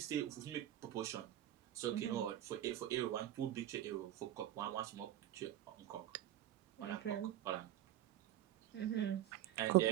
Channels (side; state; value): left; quieter; 12.4 dB